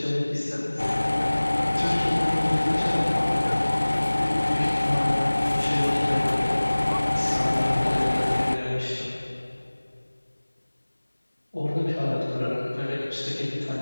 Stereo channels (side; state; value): both; inverted; correlation -1.00